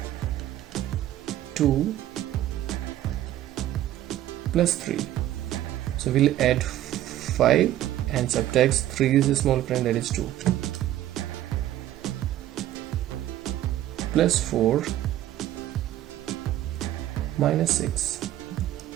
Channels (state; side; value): quieter; left; 13.2 dB